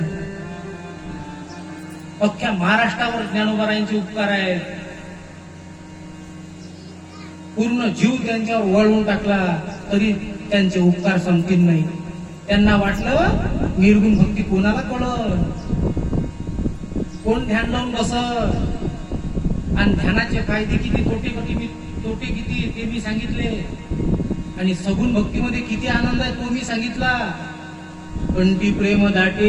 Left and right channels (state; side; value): identical; both; correlation 1.00